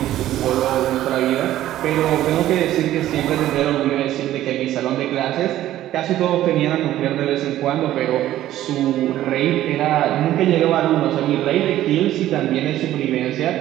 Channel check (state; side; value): quieter; left; 13.5 dB